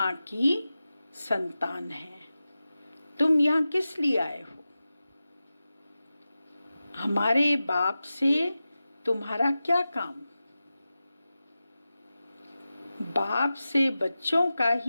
की संतान हैं। तुम यहाँ किस लिए आए हो? हमारे बाप से तुम्हारा क्या काम? बाप से बच्चों का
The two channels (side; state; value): both; inverted; correlation -0.94